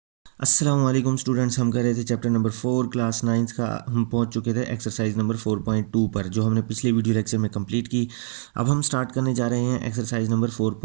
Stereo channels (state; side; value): silent; left; digital silence